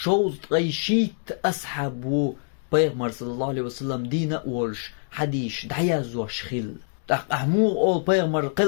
تقيشيت أصحابو پیغمبر صلى الله عليه وسلم دين أولش حديث دعيازو شخيل أحمو أول پیغمبر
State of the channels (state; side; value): silent; right; 62 dB below the other